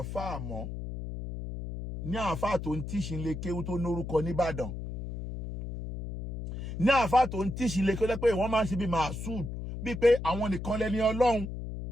àáfàá mọ́ ní àáfàá tó ń tíṣì lè kéwú tó lórúkọ nìbàdàn ní àáfàá tó ń tíṣì lè kéwú pé wọ́n máa ń ṣe bí màásùd bíi pé àwọn nìkan lẹ́ni ọlọ́run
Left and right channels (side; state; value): left; noise; hum, 7 dB below the sound